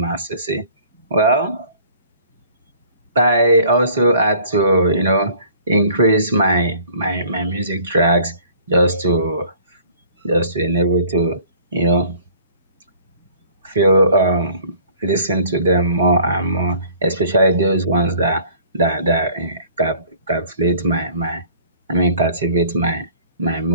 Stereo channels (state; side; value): inverted; both; correlation -0.53